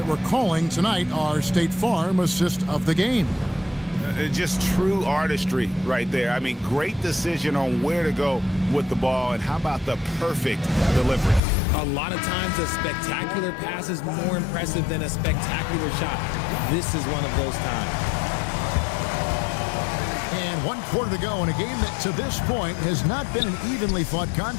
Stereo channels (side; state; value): right; drops out; at 11.4 s